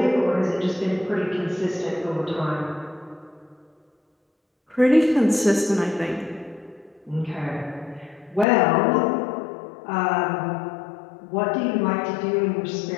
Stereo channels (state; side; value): drops out; right; at 8.5 s